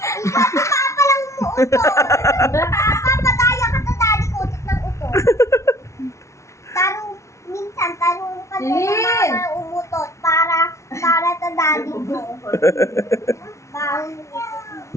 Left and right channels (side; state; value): right; late; 0.14 ms